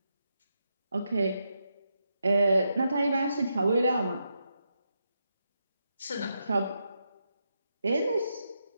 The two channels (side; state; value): both; inverted; correlation -0.84